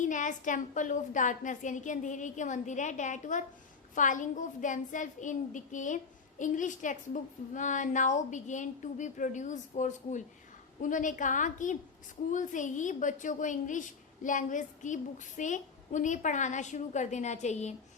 as temple of darkness, यानी कि अंधेरे के मंदिर है। That were falling of themselves in decay। English textbook now began to be produced for school। उन्होंने कहा कि स्कूल से ही बच्चों को इंग्लिश लैंग्वेज की बुक से उन्हें पढ़ाना शुरू कर देना चाहिए।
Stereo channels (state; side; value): quieter; right; 5.1 dB